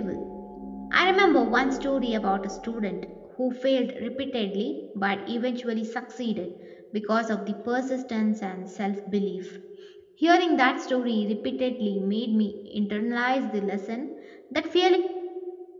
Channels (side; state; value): both; identical; correlation 1.00